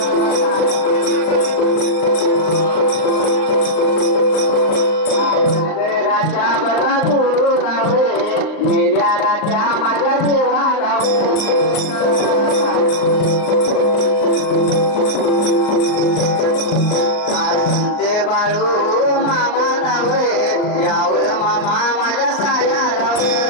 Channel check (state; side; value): late; right; 39 ms